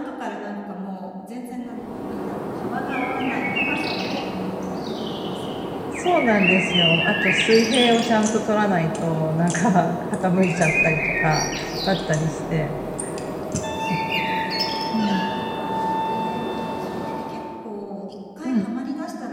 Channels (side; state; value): both; identical; correlation 1.00